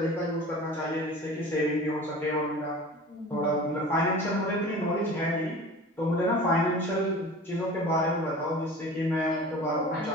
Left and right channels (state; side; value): normal; both; correlation 0.39